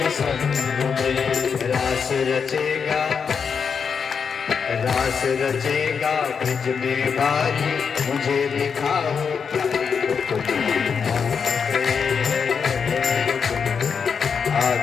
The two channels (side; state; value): right; quieter; 6.2 dB